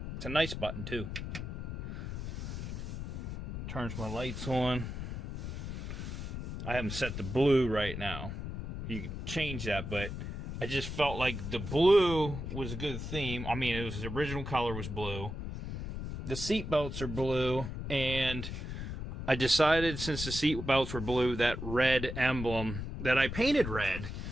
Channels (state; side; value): noise; left; rumble, 6 dB below the sound